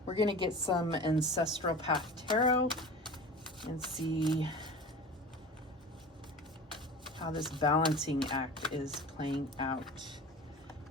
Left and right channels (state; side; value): normal; both; correlation 0.36